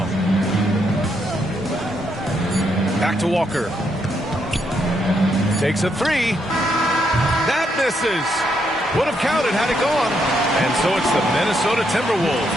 Back to Walker. Takes a 3. That misses. Would have counted had it gone. And so it's the Minnesota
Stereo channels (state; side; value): normal; both; correlation 0.77